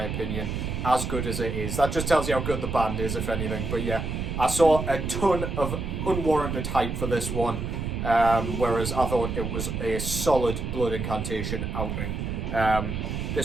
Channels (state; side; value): noise; right; rumble, 3 dB below the sound